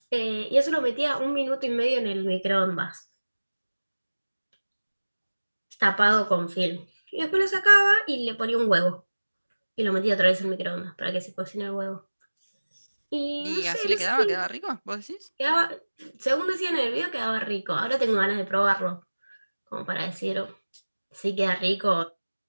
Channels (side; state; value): both; inverted; correlation -1.00